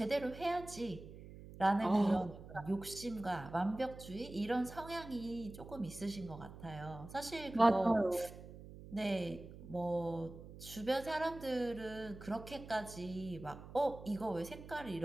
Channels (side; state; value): right; noise; hum, 15 dB below the sound